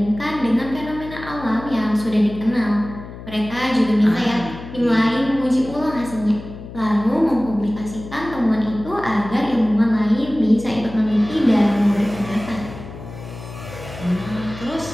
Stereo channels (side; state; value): left; noise; hum, 13 dB below the sound